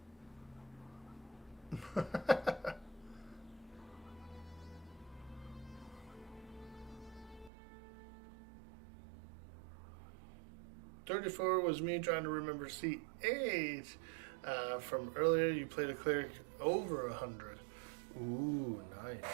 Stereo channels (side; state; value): left; drops out; at 7.5 s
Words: 34 was me trying to remember C8. From earlier, you played a cleric over 100. Ooh,